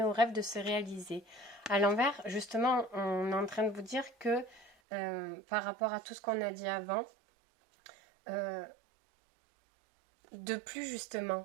aux rêves de se réaliser. À l'envers, justement, on est en train de vous dire que par rapport à tout ce qu'on a dit avant, de plus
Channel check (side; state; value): left; drops out; at 4.8 s